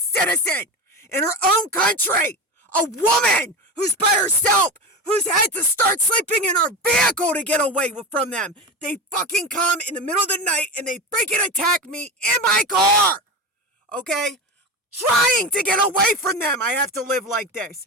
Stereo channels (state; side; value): normal; both; correlation 0.24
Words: in her own country. A woman who's by herself, who's had to start sleeping in her vehicle to get away from them. They fucking come in the middle of the night and they freaking attack me in my car. Okay? Trying to get away from them. I have to live like this.